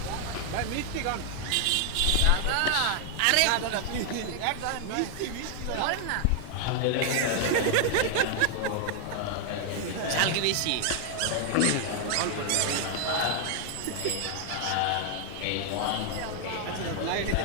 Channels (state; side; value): different; both; correlation 0.00